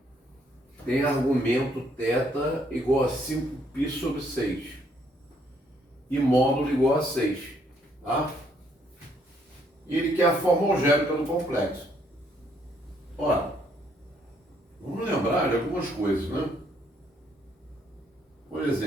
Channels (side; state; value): both; normal; correlation 0.69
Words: tem argumento θ igual a 5π sobre 6 e módulo igual a 6. Tá? E ele quer a forma algébrica do complexo. Ora, vamos lembrar de algumas coisas, né? Por